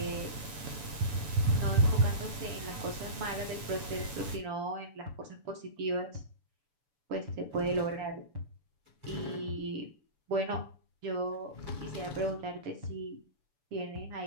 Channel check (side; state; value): left; late; 7.0 ms